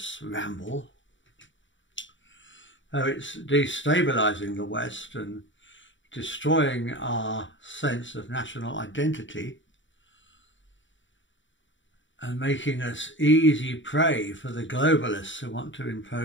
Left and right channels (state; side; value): late; right; 0.55 ms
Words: ramble, how it's destabilising the West and destroying our sense of national identity and making us easy prey for the globalists who want to